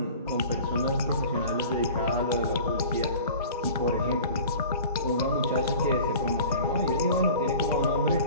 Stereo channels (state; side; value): inverted; both; correlation -0.42